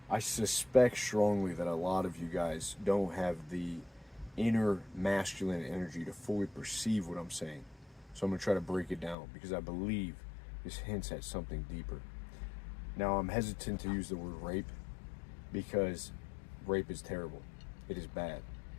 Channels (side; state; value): right; drops out; at 9.2 s